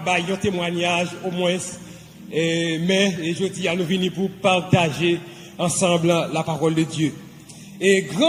de faire un témoignage au moins, mais je dis à nous venir pour partager ensemble la parole de Dieu. Et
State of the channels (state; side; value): identical; both; correlation 1.00